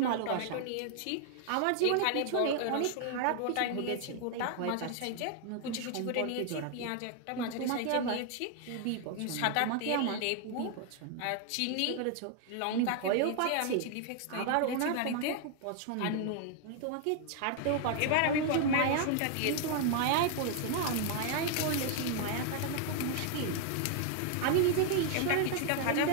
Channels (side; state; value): both; different; correlation 0.00